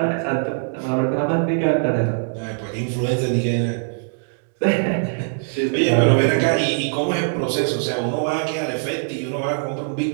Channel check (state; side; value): silent; left; digital silence